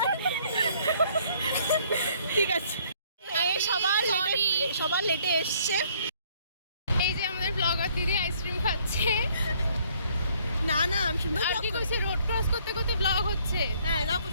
ঠিক আছে, সবার লেটে এসছে। এই যে আমাদের ব্লগার দিদি আইসক্রিম খাচ্ছে। না না, আমি সুন্দর আর কি কইছে, রোড ক্রস করতে করতে ব্লগ হচ্ছে। হ্যাঁ, না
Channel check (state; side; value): inverted; both; correlation -0.63